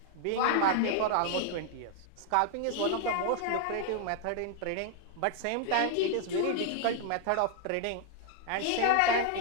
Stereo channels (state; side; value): different; both; correlation 0.00